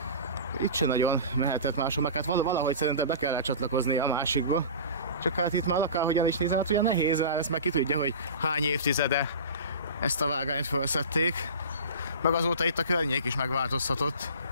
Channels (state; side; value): inverted; both; correlation -0.34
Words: itt se nagyon mehetett máshol, meg hát valahogy szerintem be kellett csatlakozni a másikba. Csak hát itt már akárhogyan is nézem, hát ugye nehéz, ezt meg ki tudja, hogy hány évtizede ezt a vágányt felszették. Meg azóta itt a környék is megváltozhatott.